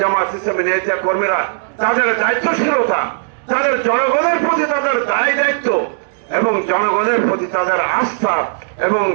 ইসলামের নেতা কর্মীরা তাদের দায়িত্বশীলতা, তাদের জনগণের প্রতি তাদের দায় দায়িত্ব এবং জনগণের প্রতি তাদের আস্থা এবং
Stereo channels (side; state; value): left; silent; 68 dB below the other